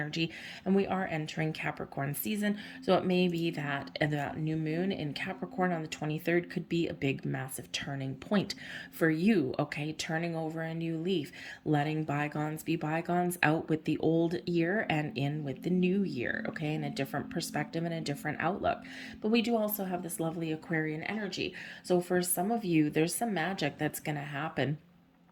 and we are entering Capricorn season. So it may be that that new moon in Capricorn on the 23rd could be a big, massive turning point for you. Okay, turning over a new leaf, letting bygones be bygones, out with the old year and in with the new year. Okay, in a different perspective and a different outlook. But we do also have this lovely Aquarian energy. So for some of you, there's some magic that's going to happen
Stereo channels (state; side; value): identical; both; correlation 1.00